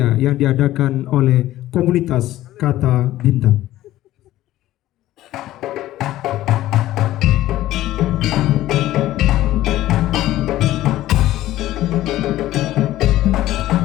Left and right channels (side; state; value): right; quieter; 14.8 dB